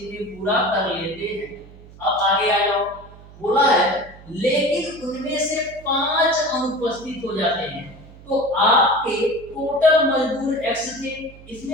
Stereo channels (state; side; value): noise; right; hum, 20 dB below the sound